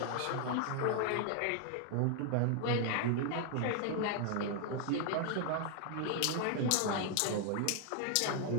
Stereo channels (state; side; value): different; both; correlation 0.00